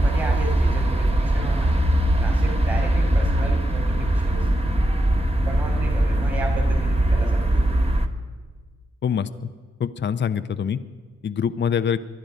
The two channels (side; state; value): both; normal; correlation 0.84